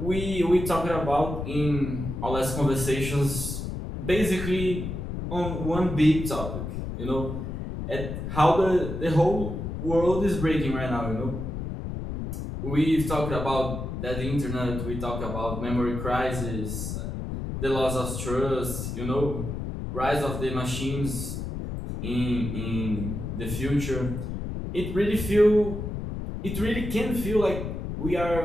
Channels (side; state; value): left; noise; rumble, 5 dB below the sound